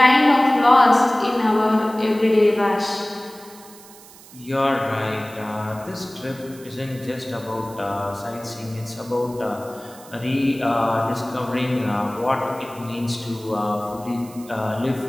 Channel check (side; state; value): right; noise; hiss, 21 dB below the sound